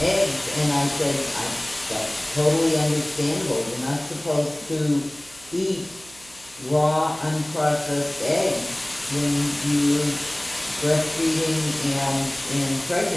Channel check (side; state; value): right; noise; hum, 24 dB below the sound